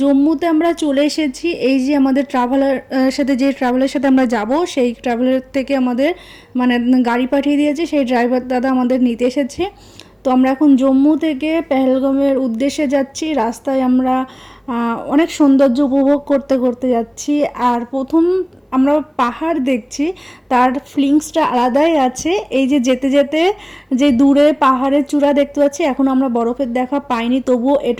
জম্মুতে আমরা চলে এসেছি। এই যে আমাদের ট্রাভেলের সাথে আমরা যাব, সেই ট্রাভেলার থেকে আমাদের মানে গাড়ি পাঠিয়ে দিয়েছে, সেই ড্রাইভার দাদা আমাদের নিতে এসেছে। তো আমরা এখন জম্মু থেকে পেহেলগামের উদ্দেশ্যে যাচ্ছি। রাস্তায় আমরা অনেক সৌন্দর্য উপভোগ করতে করতে যাচ্ছি। আর প্রথম আমরা পাহাড় দেখছি, তার ফিলিংসটা আলাদাই আছে। এই যে যেতে যেতে যে দূরে পাহাড়ের চূড়া দেখতে পাচ্ছি, এখন আমরা বরফের দেখা পাইনি, তবুও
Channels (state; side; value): identical; both; correlation 1.00